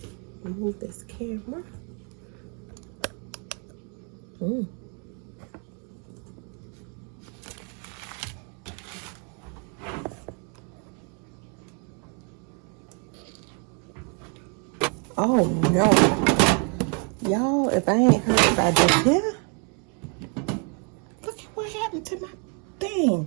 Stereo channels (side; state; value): left; quieter; 38.1 dB